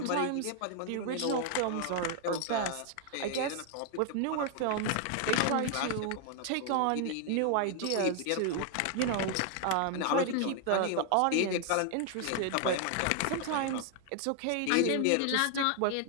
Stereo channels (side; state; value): both; different; correlation 0.00